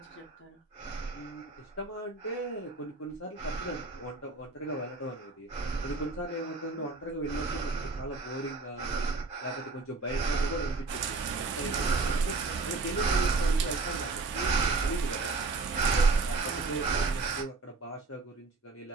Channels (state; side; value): quieter; left; 3.8 dB